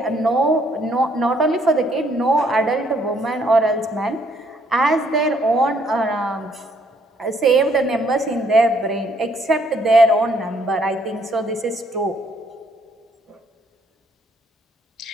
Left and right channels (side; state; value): both; normal; correlation 0.68